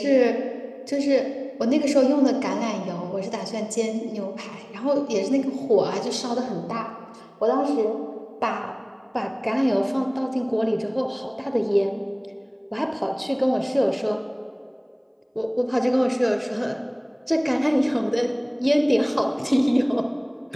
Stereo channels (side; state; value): both; identical; correlation 1.00